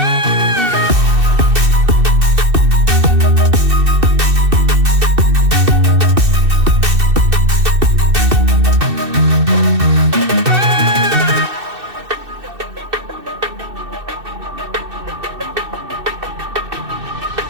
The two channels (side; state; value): left; late; 2.6 ms